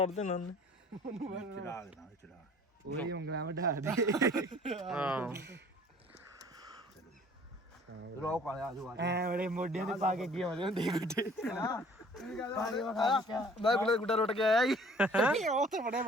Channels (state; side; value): normal; both; correlation 0.53